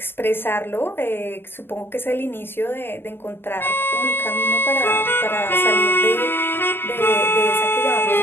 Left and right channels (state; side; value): late; right; 0.10 ms